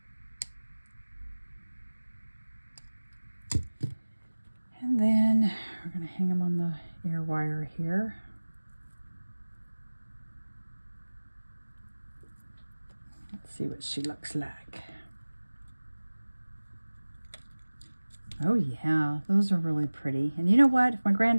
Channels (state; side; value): inverted; both; correlation -1.00